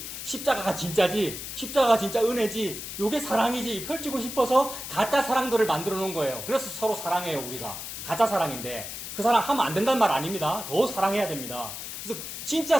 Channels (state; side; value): noise; left; hiss, 8 dB below the sound